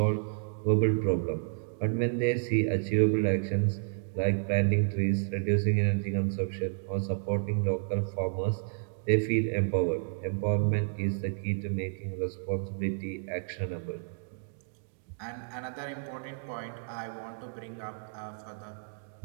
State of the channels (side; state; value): left; silent; digital silence